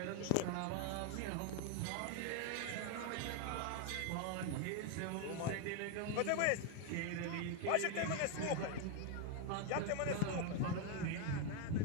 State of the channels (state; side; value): different; both; correlation 0.01